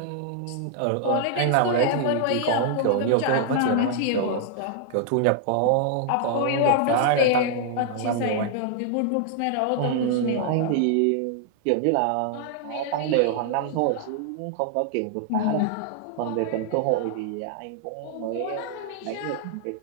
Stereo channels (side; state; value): both; different; correlation -0.01